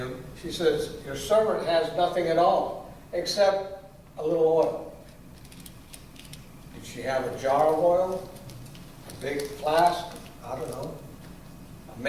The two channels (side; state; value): both; identical; correlation 1.00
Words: She says, "Your servant has nothing at all except a little oil." Did she have a jar of oil? A big flask? I don't know. A